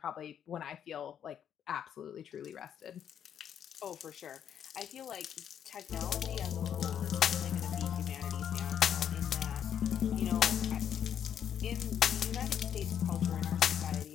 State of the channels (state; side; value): quieter; right; 9.1 dB